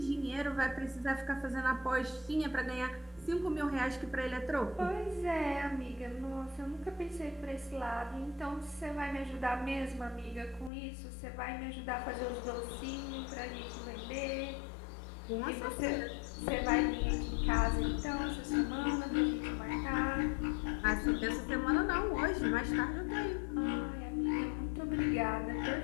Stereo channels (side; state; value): right; drops out; at 10.7 s